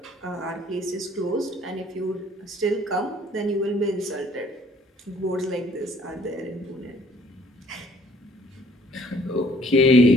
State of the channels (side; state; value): both; normal; correlation 0.59